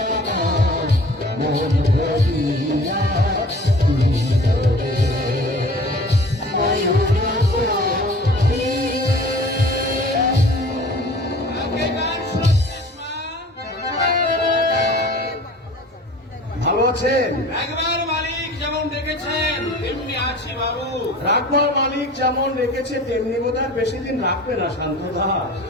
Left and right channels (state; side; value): normal; both; correlation 0.45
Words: আমার মন ভরিয়া দিল রে। ময়ূর পক্ষী আগে গান শুনছিস মা? ভালো আছেন? একবার মালিক যেমন দেখেছেন তেমনি আছি বাবু। রাখবার মালিক যেমন রেখেছে তেমনি বোধহয় বেশি দিন রাখবে না শান্ত দাস।